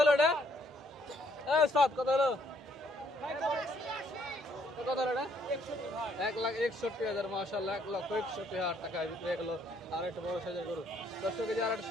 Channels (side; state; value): both; normal; correlation 0.68